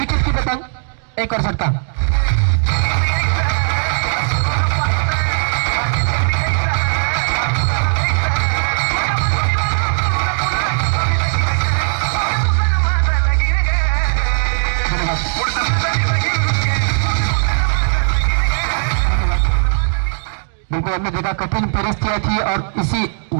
की पतंग, एक और झटका। बिल्कुल हमने देखा कठिन परिस्थितियां थी और इसी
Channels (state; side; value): silent; left; digital silence